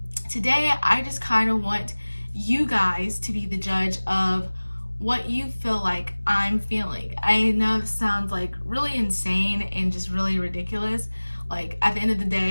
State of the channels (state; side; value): inverted; both; correlation -1.00